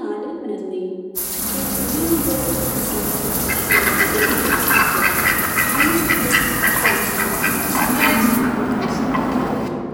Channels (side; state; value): both; identical; correlation 1.00